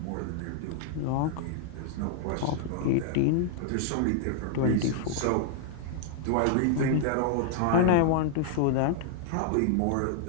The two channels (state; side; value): different; both; correlation -0.01